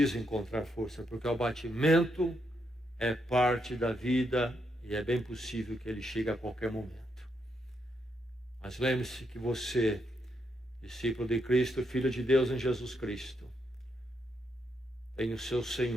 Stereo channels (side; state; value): both; normal; correlation 0.79